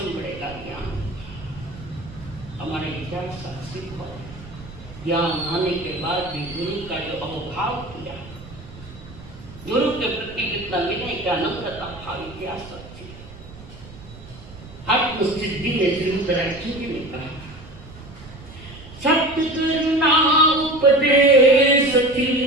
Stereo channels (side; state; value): right; noise; rumble, 17 dB below the sound